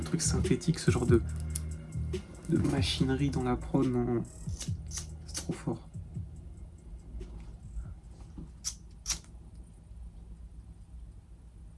synthétique, ce genre de machinerie dans la prod. Non, c'est trop fort.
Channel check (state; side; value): identical; both; correlation 1.00